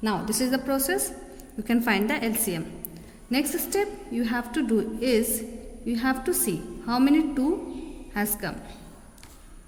Now this is the process. You can find the LCM. Next step you have to do is, you have to see how many 2 has come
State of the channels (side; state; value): both; identical; correlation 1.00